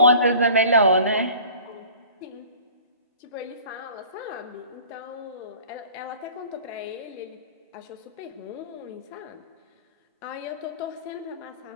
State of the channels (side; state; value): both; inverted; correlation -0.46